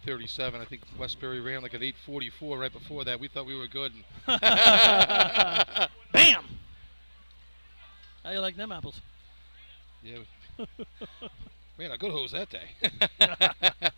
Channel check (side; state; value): both; inverted; correlation -1.00